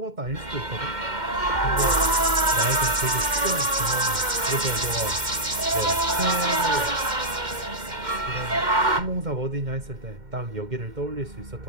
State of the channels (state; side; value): late; left; 2.1 ms